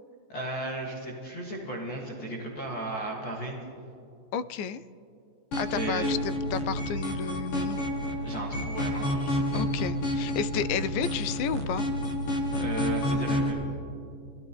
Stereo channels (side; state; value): right; late; 15 ms